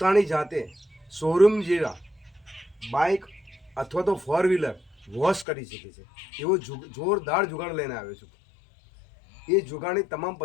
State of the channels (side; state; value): right; drops out; at 5.5 s